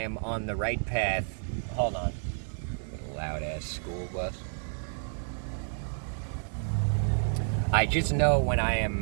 on the right path. Hold on. Loud ass school bus. I just know when I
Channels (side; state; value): left; silent; digital silence